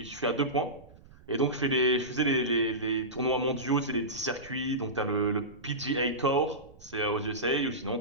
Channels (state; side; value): noise; right; rumble, 23 dB below the sound